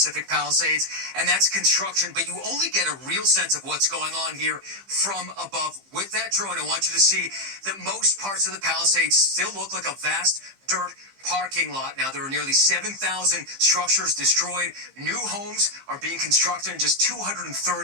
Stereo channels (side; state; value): left; late; 15 ms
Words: Palisades, and that's construction. But you only get a real sense of what's going on here from above. With that drone, I want you to see that most parts of the Palisades still look like a vast dirt parking lot. Now, there are nearly 7,000 structures destroyed. New homes are being constructed in just